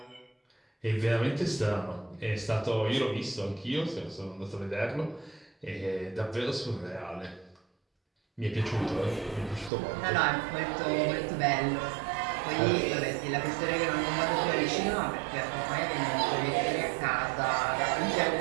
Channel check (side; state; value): left; drops out; at 9.7 s